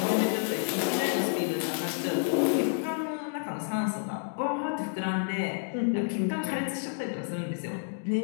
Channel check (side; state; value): right; silent; digital silence